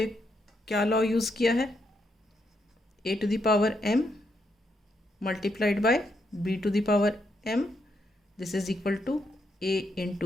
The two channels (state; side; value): normal; both; correlation 0.79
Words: क्या law use किया है? a to the power m multiplied by b to the power m. This is equal to a